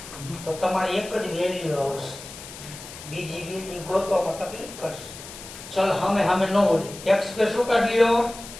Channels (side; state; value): left; noise; hiss, 14 dB below the sound